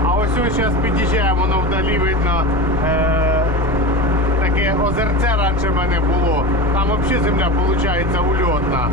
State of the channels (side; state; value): both; normal; correlation 0.26